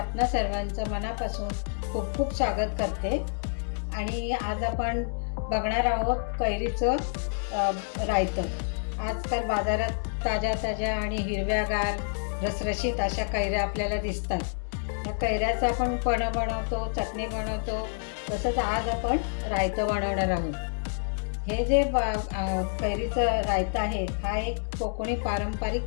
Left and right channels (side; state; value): right; silent; digital silence